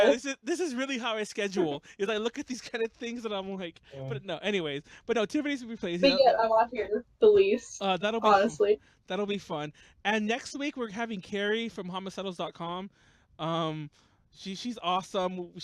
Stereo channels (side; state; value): both; identical; correlation 1.00